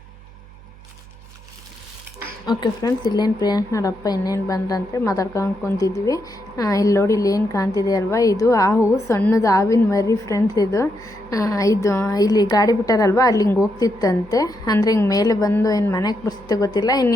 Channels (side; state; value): right; noise; hum, 21 dB below the sound